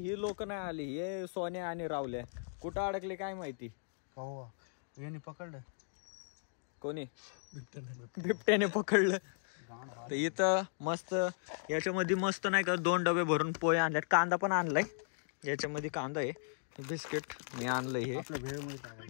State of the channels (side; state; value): right; silent; digital silence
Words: लोक नाही आली. हे सोन्या आणि रावल्या कुठं अडकले काय माहिती. पकडलं कोणी बिबट्याने पकडलं. तर इथं मस्त याच्यामध्ये मस्त नाही का 2 डबे भरून पोहे आणल्यात. कांदा पण आणलाय. याच्यामध्ये कांदा आहे, बिस्किट मी आणलंय हे,